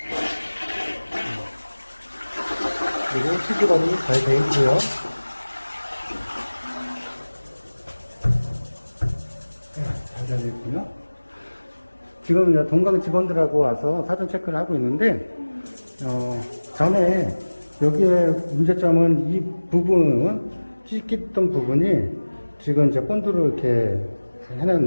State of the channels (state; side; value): inverted; both; correlation -1.00